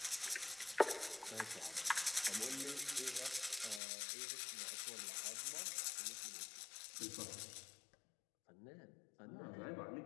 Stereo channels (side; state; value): right; drops out; at 3.8 s